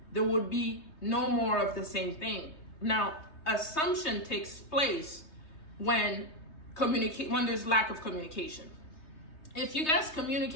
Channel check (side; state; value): right; late; 3.2 ms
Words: there would be no more of the same thing. Now, assumption takes place when there's lack of communication. If you guys